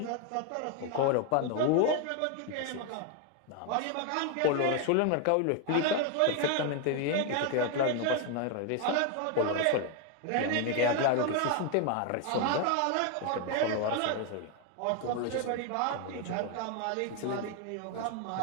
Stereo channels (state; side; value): different; both; correlation 0.01